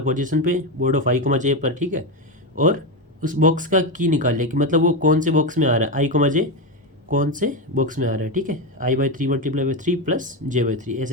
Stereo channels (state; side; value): normal; both; correlation 0.12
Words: पोजीशन पे बोर्ड ऑफ i, j पर, ठीक है। और उस बॉक्स का की निकाल लिया कि मतलब वो कौन से बॉक्स में आ रहा है, i, j कौन से बॉक्स में आ रहा है, ठीक है। i/3 × 3 + j/3